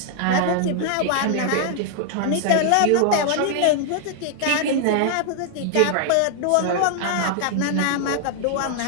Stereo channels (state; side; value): different; both; correlation 0.00